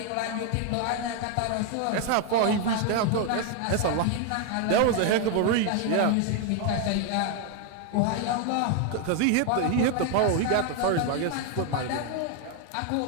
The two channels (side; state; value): both; different; correlation 0.01